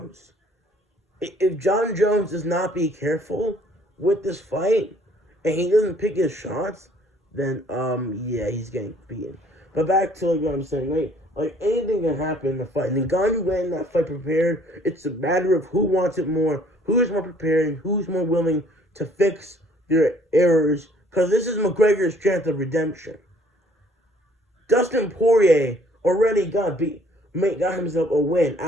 If John Jones does not be careful with this fight, and he doesn't pick his shots, then, yeah, he's getting beaten. But back to what I'm saying, like anything can happen in the fight. Ngannou went in that fight prepared. It's a matter of who wants it more, who is more prepared, and who's more willing to fix their errors. Because this is McGregor's chance of redemption. Dustin Poirier already got himself a win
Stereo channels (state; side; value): normal; both; correlation 0.59